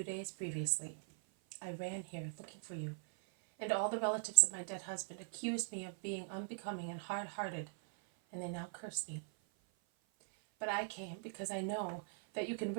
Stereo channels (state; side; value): silent; left; 50 dB below the other